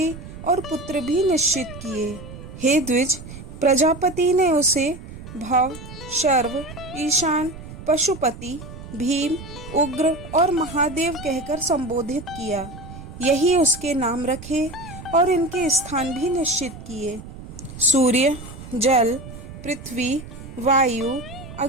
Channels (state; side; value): noise; right; rumble, 13 dB below the sound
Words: और पुत्र भी निश्चित किए। हे द्विज, प्रजापति ने उसे भव, शर्व, ईशान, पशुपति भीम, उग्र और महादेव कहकर संबोधित किया। यही उसके नाम रखे और इनके स्थान भी निश्चित किए। सूर्य, जल, पृथ्वी, वायु,